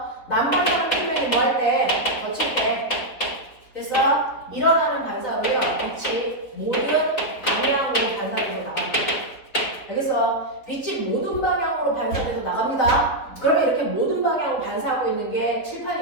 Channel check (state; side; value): late; right; 3.9 ms